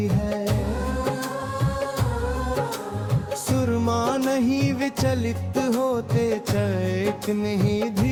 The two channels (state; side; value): identical; both; correlation 1.00